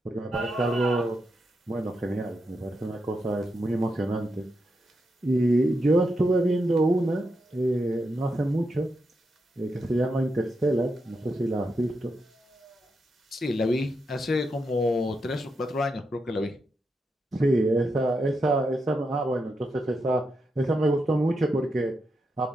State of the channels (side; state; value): both; normal; correlation 0.85